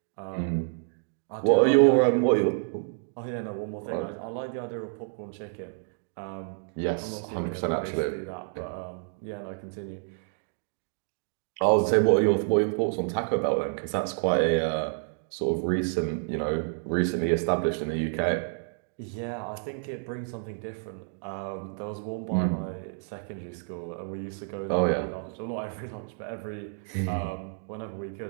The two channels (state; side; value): silent; left; digital silence